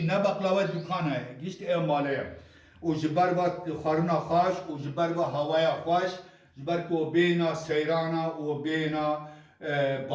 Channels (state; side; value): identical; both; correlation 1.00